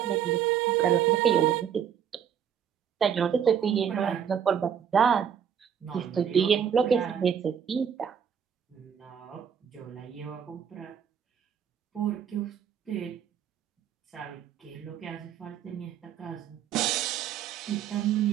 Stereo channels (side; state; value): left; quieter; 8.3 dB